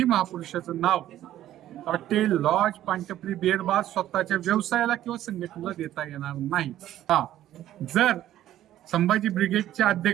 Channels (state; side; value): quieter; left; 12.9 dB